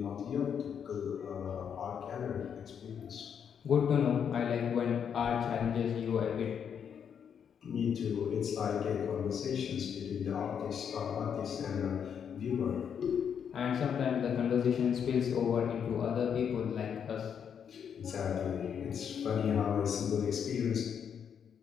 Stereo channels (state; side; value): quieter; right; 7.8 dB